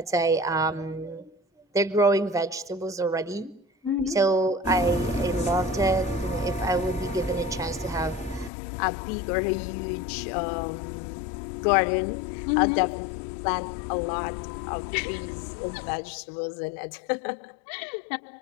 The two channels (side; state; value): right; drops out; at 8.5 s